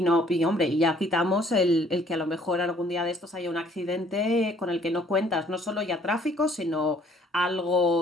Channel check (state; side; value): normal; both; correlation 0.60